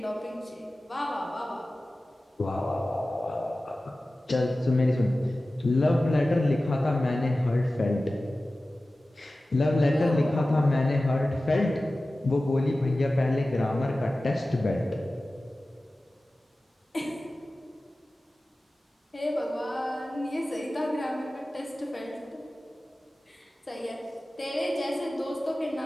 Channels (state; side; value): normal; both; correlation 0.96